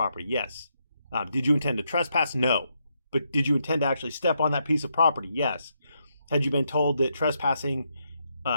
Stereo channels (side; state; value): both; inverted; correlation -0.79